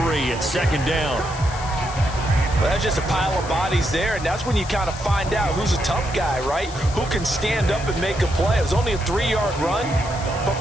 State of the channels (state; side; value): noise; left; hiss, 15 dB below the sound